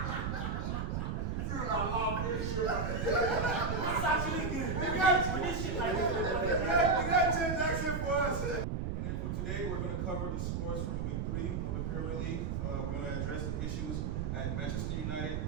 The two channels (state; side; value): noise; right; rumble, 1 dB below the sound